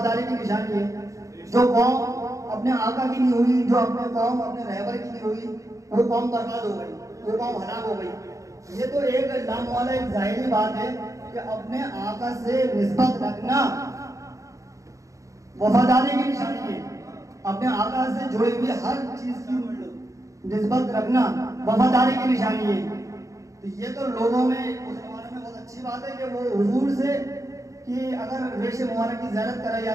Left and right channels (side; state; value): left; late; 0.16 ms